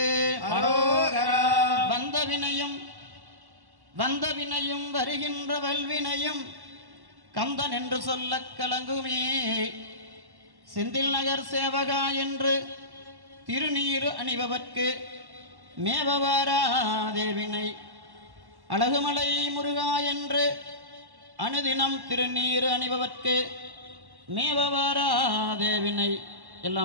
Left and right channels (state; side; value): late; left; 1.1 ms